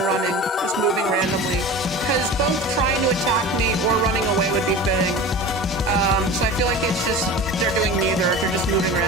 just moving randomly. Because both trying to attack me or running away would be fitting. So I feel like it's just, they're doing neither, they're just moving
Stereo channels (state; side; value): normal; both; correlation 0.34